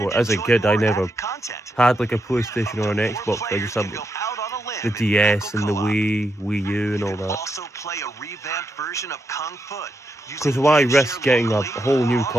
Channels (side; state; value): both; normal; correlation 0.83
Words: as a enjoy kid I more never added content. had like a PlayStation or an Or Xbox. I players just had can like, go out on a limb the in DS and the co-op. Wii U and You all can that. also play a revamped version of Kung Foot. Because why risk getting a whole new